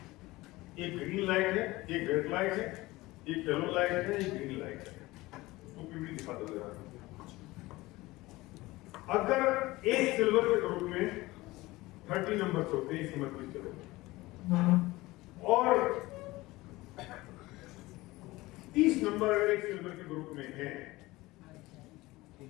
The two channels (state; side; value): quieter; right; 19.8 dB